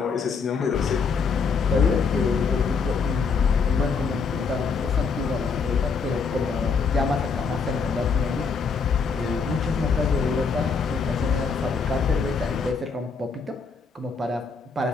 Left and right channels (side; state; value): right; quieter; 5.2 dB